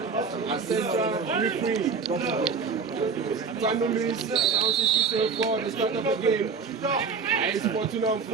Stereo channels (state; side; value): quieter; left; 5.3 dB